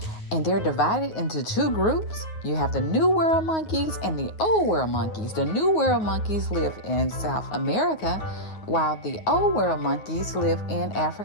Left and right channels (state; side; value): late; right; 9.4 ms